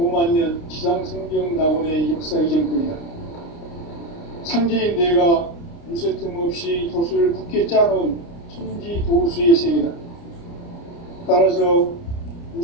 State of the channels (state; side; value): late; right; 29 ms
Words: 지상성경 낙원의 역사 이전권이다. 상제인 내가 무쇠틈 없이 도수를 굳게 짜놓은 천지 도수의 세계다. 따라서